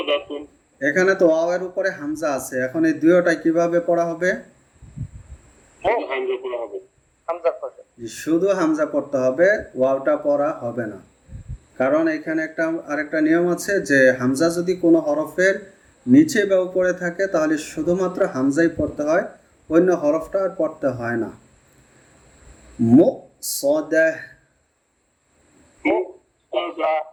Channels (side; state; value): both; identical; correlation 1.00